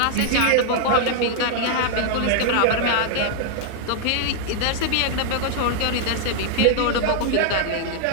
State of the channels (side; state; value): both; different; correlation -0.01